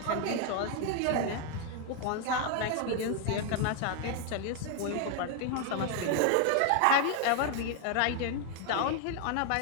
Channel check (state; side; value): different; both; correlation 0.00